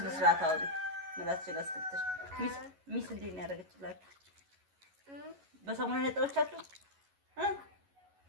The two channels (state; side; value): late; left; 11 ms